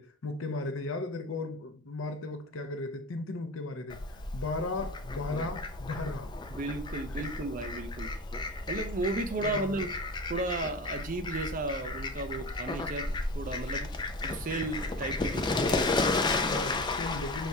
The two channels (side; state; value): both; normal; correlation 0.30